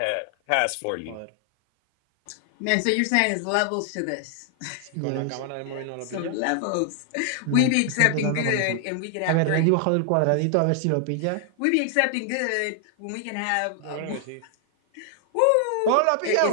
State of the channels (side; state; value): both; different; correlation 0.00